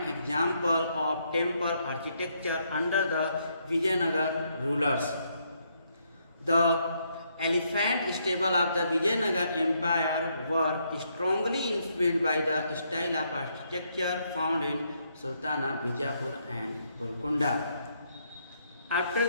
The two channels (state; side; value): inverted; both; correlation -0.75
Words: example of temple architecture under the Vijayanagar rulers. The elephant stable of the Vijayanagar empire were strongly influenced by the style of architecture found in Sultana, Bijapur and Golconda. After